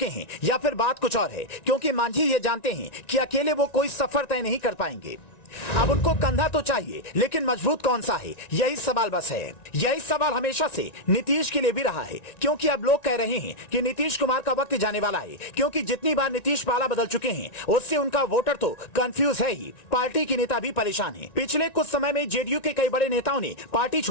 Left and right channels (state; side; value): late; right; 1.9 ms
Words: हैं या फिर बात कुछ और है? क्योंकि मांझी ये जानते हैं कि अकेले वो कोई सफर तय नहीं कर पाएंगे। अब उनको कंधा तो चाहिए, लेकिन मजबूत कौन सा है, यही सवाल बस है। यही सवाल हमेशा से नीतीश के लिए भी रहा है, क्योंकि अब लोग कह रहे हैं कि नीतीश कुमार का वक्त जाने वाला है। क्योंकि जितनी बार नीतीश पाला बदल चुके हैं, उससे उनका वोटर तो कंफ्यूज है ही, पार्टी के नेता भी परेशान हैं। पिछले कुछ समय में जेडीयू के कई बड़े नेताओं ने पार्टी